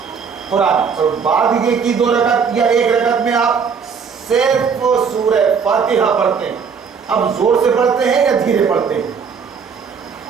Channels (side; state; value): left; quieter; 6.1 dB